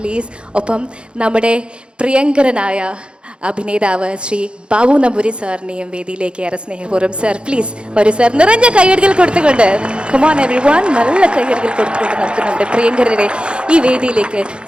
ഒപ്പം നമ്മുടെ പ്രിയങ്കരനായ അഭിനേതാവ് ശ്രീ ബാബു നമ്പൂരി സാറിനെയും വേദിയിലേക്ക് ഏറെ സ്നേഹപൂർവ്വം. സാർ, പ്ലീസ് വരൂ സാർ. നിറഞ്ഞ കയ്യടികൾ കൊടുത്തുകൊണ്ട്, കമോൺ എവരിവൺ, നല്ല കയ്യടികൾ കൊടുത്തുകൊണ്ട് നമുക്ക് നമ്മുടെ പ്രിയങ്കരരെ ഈ വേദിയിലേക്ക്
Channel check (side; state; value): left; late; 0.055 ms